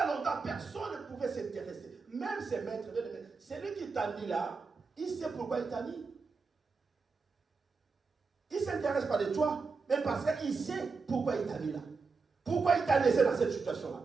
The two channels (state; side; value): quieter; left; 4.6 dB